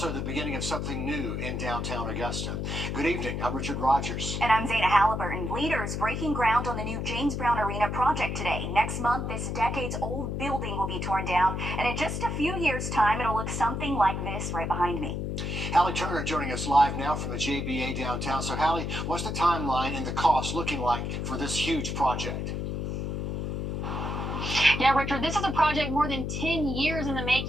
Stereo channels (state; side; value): noise; left; hum, 2 dB below the sound